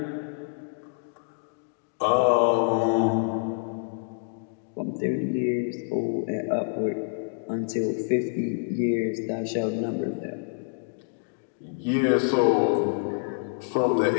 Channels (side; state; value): right; silent; digital silence